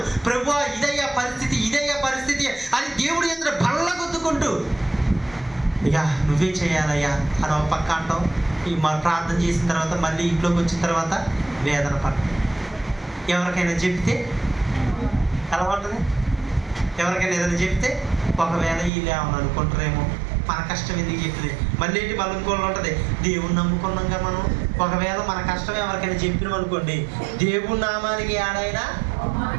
ప్రభువా ఇదయ్యా పరిస్థితి, ఇదయ్యా పరిస్థితి అని దేవుడి ఎదుట బల్ల గుద్దుకుంటూ ఇక నువ్వే చేయాలయ్యా అని ఒక పక్క అంటాం. మా ప్రార్థన చేసిన తర్వాత మళ్ళీ ఇంట్లోకి వచ్చిన తర్వాత వేదన పడతాం. ఎవరికైనా చెప్తే ఎలా ఉంటుంది? ఎవరికైనా ఏదైనా చెప్తే ఒకవేళ వీళ్ళు ఏమని అనుకుంటారేమో, మన కష్టం ఎందుకు చెప్తుంది, మళ్ళీ ఏంటి మళ్ళీ ఇంకోళ్ళు ఉంటుంది. దేవుణ్ణి నమ్ముకున్నాగా మనం, ఒకవేళ మన కష్టం ఎవరికైనా చెప్పినాం అనుకోండి, దేవుడి నామానికి ఏడైనా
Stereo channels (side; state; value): left; drops out; at 18.9 s